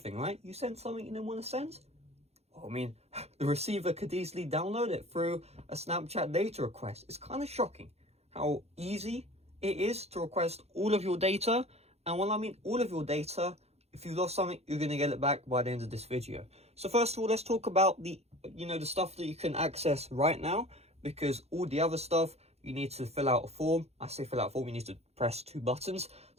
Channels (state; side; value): late; left; 0.31 ms